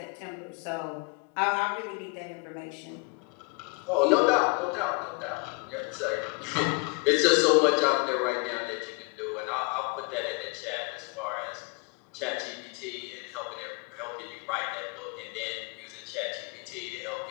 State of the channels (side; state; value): right; quieter; 32.6 dB